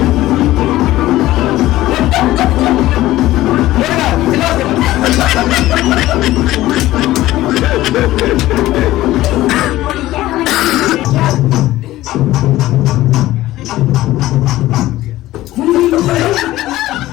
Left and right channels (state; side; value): quieter; right; 15.9 dB